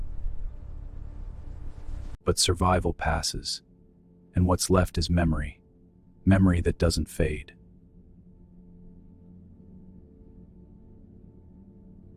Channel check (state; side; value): identical; both; correlation 1.00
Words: But survival passes, and what's left is memory, memory that doesn't fade.